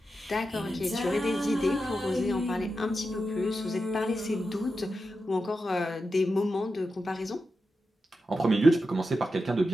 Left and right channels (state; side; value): normal; both; correlation 0.89